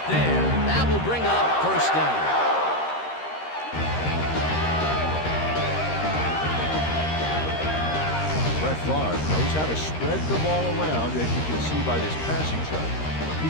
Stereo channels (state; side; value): late; right; 13 ms